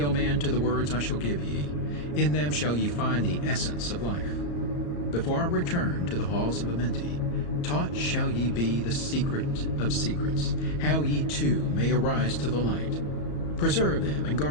O man, to the words I shall give ye. In them shall ye find the essence of life. Before I return to the halls of Amenti, taught shall ye be the secret of secrets, how ye too may arise to the light. Preserve them and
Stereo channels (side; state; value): right; late; 34 ms